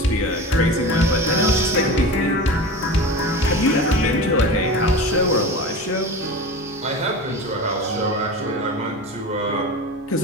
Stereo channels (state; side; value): normal; both; correlation 0.30